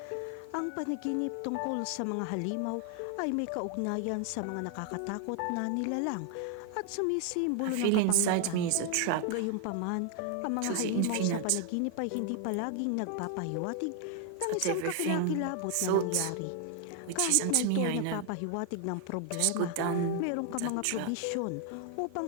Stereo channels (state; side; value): different; both; correlation 0.00